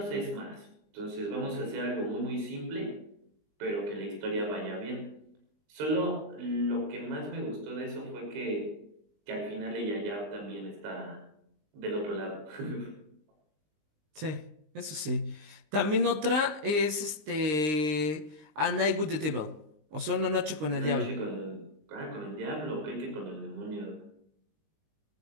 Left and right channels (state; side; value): late; left; 20 ms